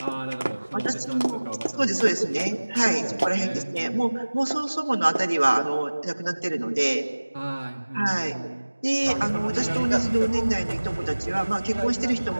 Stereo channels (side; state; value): both; inverted; correlation -1.00